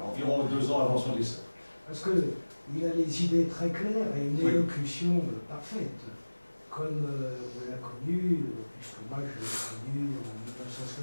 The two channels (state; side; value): inverted; both; correlation -1.00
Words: environ 2 ans avant son décès. Parce qu'il a les idées très claires et une élocution parfaite, comme on l'a connu, puisque moi je l'ai connu en